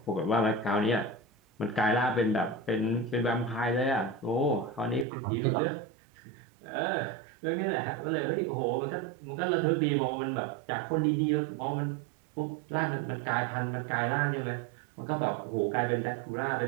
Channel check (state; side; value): drops out; left; at 5.1 s